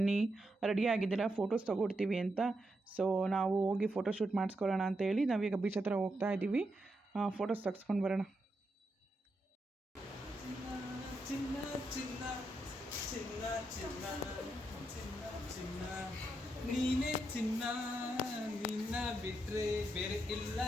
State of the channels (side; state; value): both; normal; correlation 0.83